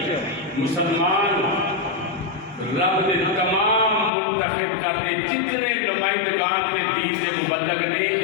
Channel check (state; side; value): drops out; right; at 4.1 s